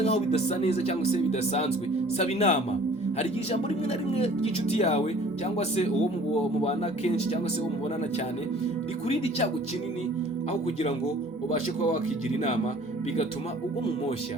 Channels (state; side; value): normal; both; correlation 0.51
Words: nkaho bidasa neza cyangwa se bidasanzwe, saba inama. Hari igihe ijambo rimwe na rimwe ry'inshuti yawe cyangwa se uwo mubana kenshi cyangwa se uwo mubonana cyane rikurinda icyago kinini, aho kugira ngo ubashe kuba wakigira inama bigatuma ugwa mu